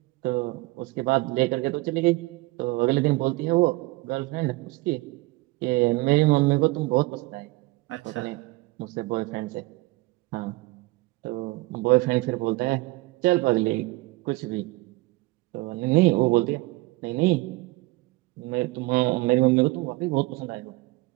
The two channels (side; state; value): left; quieter; 21.1 dB